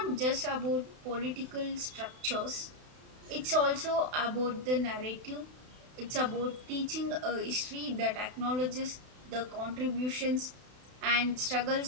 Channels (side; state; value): left; late; 32 ms